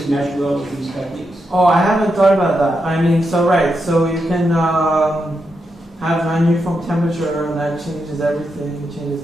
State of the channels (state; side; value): normal; both; correlation 0.85